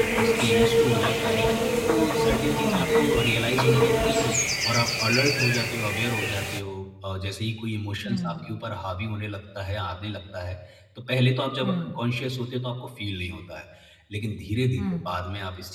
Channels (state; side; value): identical; both; correlation 1.00